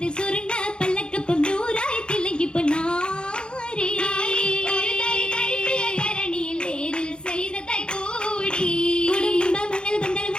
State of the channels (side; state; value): right; late; 0.051 ms